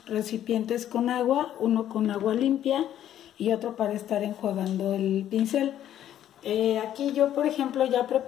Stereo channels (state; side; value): quieter; right; 11.3 dB